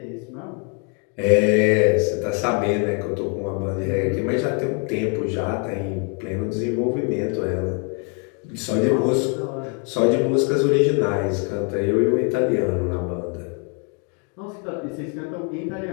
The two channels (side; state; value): right; quieter; 36.5 dB